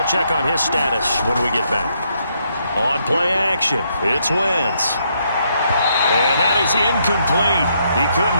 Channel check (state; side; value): inverted; both; correlation -0.75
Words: check on his status when we get back. On play action, it's Wentz. And that is incomplete. He